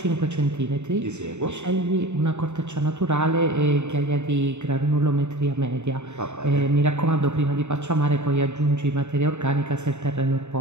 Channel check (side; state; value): left; late; 0.83 ms